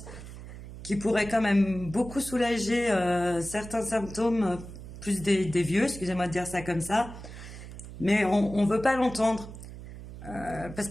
qui pourraient quand même beaucoup soulager certains symptômes, plus des vieux, excusez-moi de dire ça comme ça, mais on veut pas l'entendre. Parce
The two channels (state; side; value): noise; right; hum, 13 dB below the sound